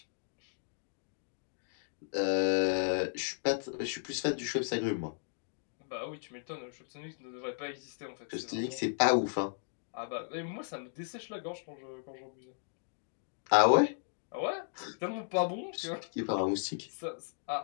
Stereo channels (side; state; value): right; silent; digital silence